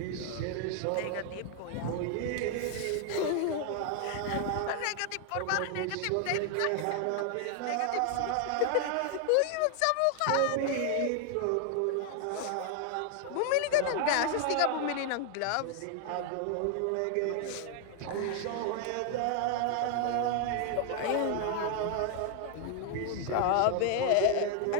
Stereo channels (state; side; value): different; both; correlation 0.00